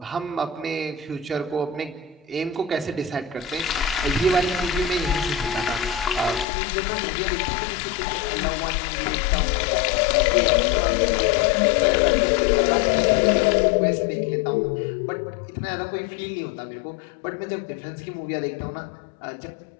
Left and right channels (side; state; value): right; drops out; at 6.5 s